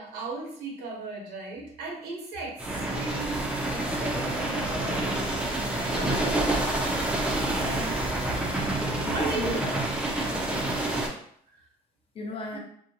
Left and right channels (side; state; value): both; normal; correlation 0.53